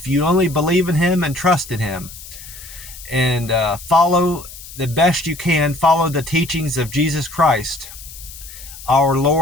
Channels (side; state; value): left; noise; hiss, 15 dB below the sound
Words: you only believe in Him and trust in Him, and follow the best you can, follow the teachings of Jesus Christ, our